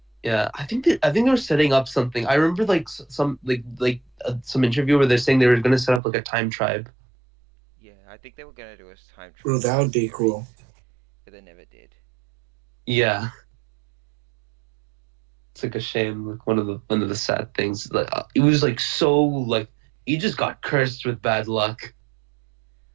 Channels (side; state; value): left; drops out; at 6.0 s